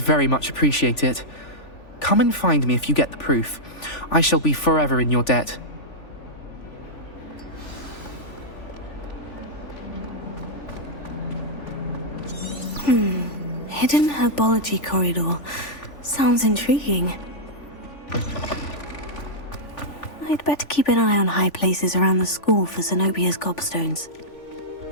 very much appreciate it. Come and find me if you get the proof. I shall be forever in your debt. Hidden herbology corridor. Sounds intriguing. I'd better keep an eye on high places around the school for Zenobia's gobstones.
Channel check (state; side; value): late; right; 3.4 ms